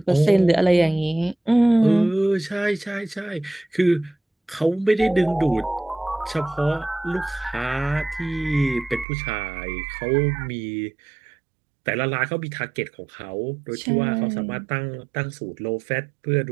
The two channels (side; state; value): left; drops out; at 9.1 s